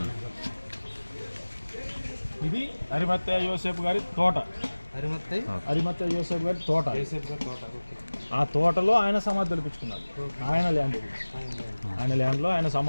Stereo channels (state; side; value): inverted; both; correlation -1.00